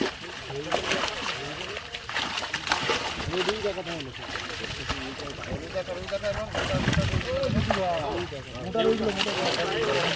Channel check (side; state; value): both; identical; correlation 1.00